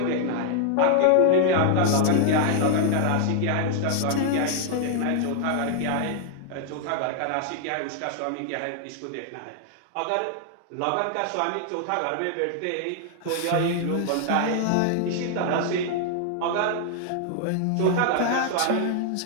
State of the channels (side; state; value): both; different; correlation 0.00